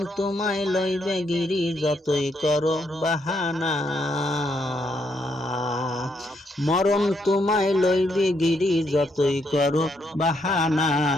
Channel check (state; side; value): normal; both; correlation 0.76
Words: তোমায় লইবে গিরি যতই করো বাহানা। মরণ তোমায় লইবে গিরি যতই করো বাহানা।